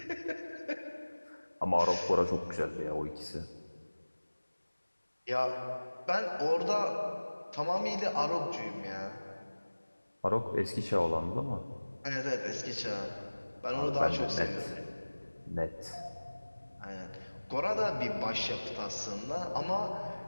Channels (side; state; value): both; inverted; correlation -1.00